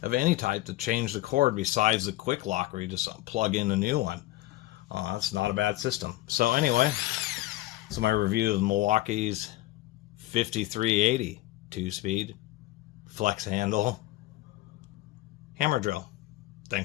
of any type to change the cord besides the quick lock, where you just plug in a new one. It's not a bad system. So anyway, so my review of Milwaukee's 5380 2-speed flex handle hammer drill.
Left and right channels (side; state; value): right; quieter; 17.4 dB